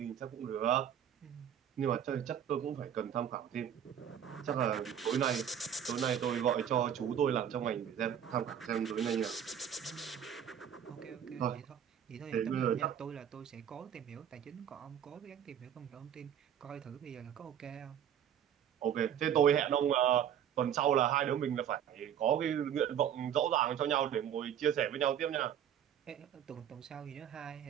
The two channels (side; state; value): left; quieter; 9.3 dB